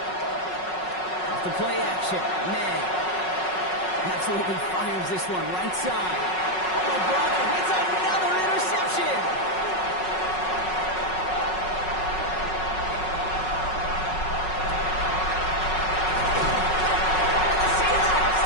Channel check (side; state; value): right; late; 5.4 ms